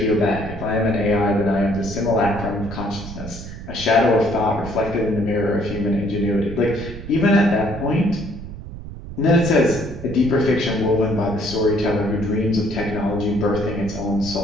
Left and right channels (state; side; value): noise; right; rumble, 11 dB below the sound